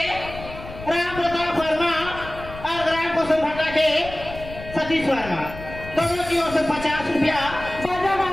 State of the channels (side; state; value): left; noise; rumble, 13 dB below the sound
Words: राम प्रताप वर्मा और ग्राम कुसुम भट्टा के सतीश वर्मा दोनों की ओर से 50 रुपया बाजा